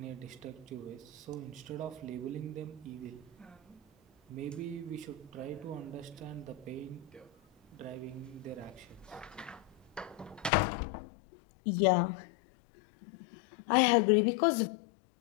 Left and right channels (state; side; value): drops out; right; at 10.5 s